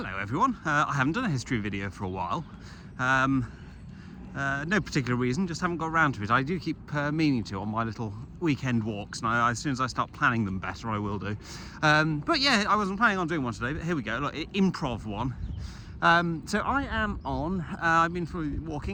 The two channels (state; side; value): identical; both; correlation 1.00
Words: everyone, I haven't done a history video for a while. No particular reason, just haven't got around to it. I do keep meaning to on my little weekend walks, and as soon as I start planning them better I will do. But yeah, I wasn't planning on doing one today, but here we go, look, improv one. So I am on, I've been